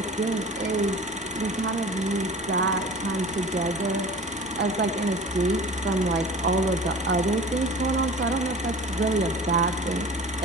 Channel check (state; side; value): normal; both; correlation 0.40